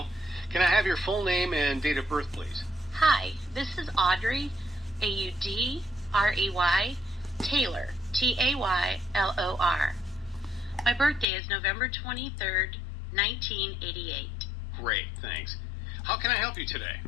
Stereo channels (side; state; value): right; drops out; at 11.2 s